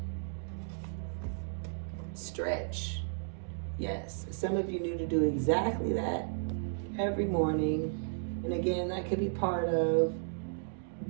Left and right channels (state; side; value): silent; left; digital silence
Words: Stretch. Yes. Some of you need to do exactly that every morning. And again, that could be part of